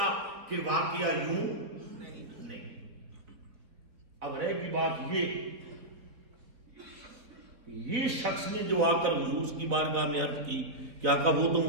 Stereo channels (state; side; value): late; left; 4.3 ms